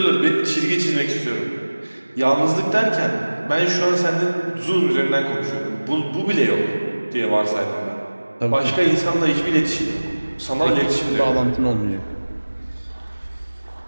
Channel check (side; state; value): both; inverted; correlation -1.00